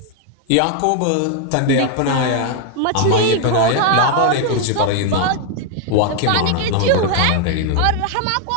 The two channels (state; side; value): different; both; correlation 0.00